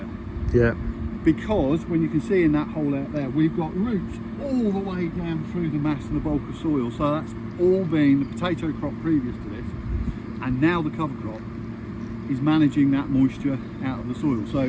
Yeah. because when you can see in that hole out there, we've got roots all the way down through the mass and the bulk of soil. So that's all been the potato crop previous to this, and now the cover crop is managing that moisture out of the soil.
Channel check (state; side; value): identical; both; correlation 1.00